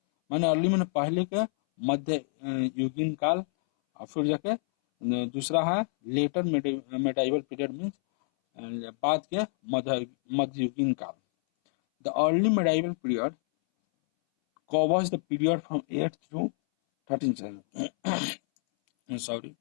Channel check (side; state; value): right; silent; 59 dB below the other